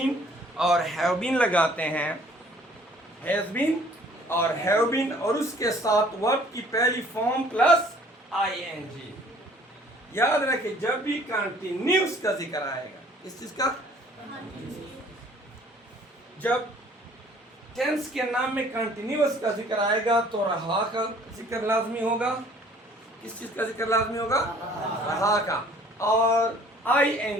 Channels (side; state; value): both; normal; correlation 0.55